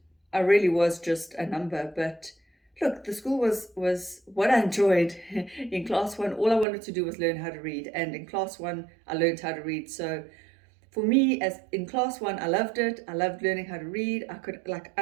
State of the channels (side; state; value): left; drops out; at 6.7 s